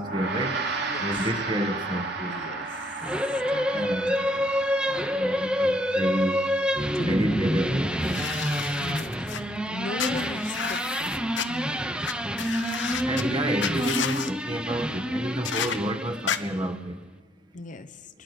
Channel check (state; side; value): normal; both; correlation 0.70